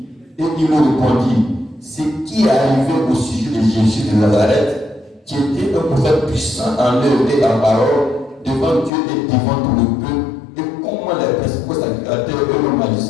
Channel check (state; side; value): drops out; right; at 8.9 s